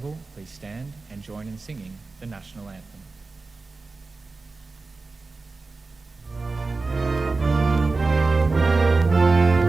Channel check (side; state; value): left; quieter; 3.8 dB